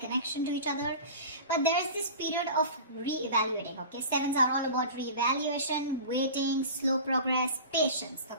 to each other. But there is this period of re-evaluating, okay? Sevens are all about re-evaluation, waiting, slow progress, patience,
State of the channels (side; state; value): both; inverted; correlation -0.35